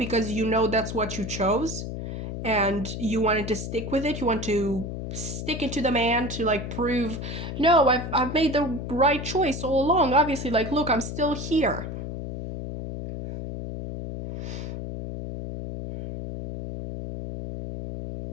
you know that's what you chose and you wanted to stick with it. You want to stick it to the man to like prove, no, I've made the right choice all along. Obviously, like, look, I'm still here.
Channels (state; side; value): noise; left; hum, 6 dB below the sound